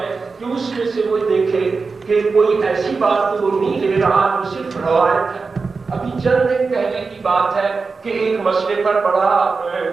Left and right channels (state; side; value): quieter; left; 4.5 dB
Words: کہ اس میں سے وہ دیکھے کہ کوئی ایسی بات تو وہ نہیں لے رہا جو صرف روایت ہے. ابھی چند دن پہلے کی بات ہے کہ ایک مسئلے پر بڑا